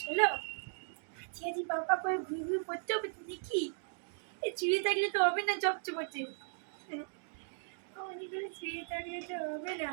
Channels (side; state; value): left; silent; digital silence